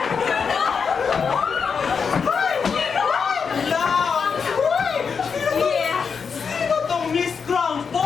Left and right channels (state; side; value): quieter; right; 5.9 dB